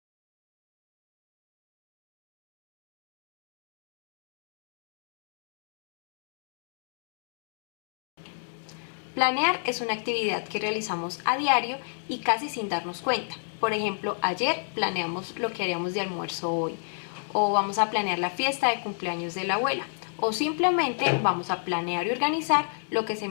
Planear es una actividad que realizamos a diario y casi sin darnos cuenta. Por ejemplo, ayer planeamos lo que haríamos de almuerzo hoy, o vamos a planear la fiesta de cumpleaños de la abuela, o simplemente vamos a planear y organizar lo que se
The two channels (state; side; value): silent; right; digital silence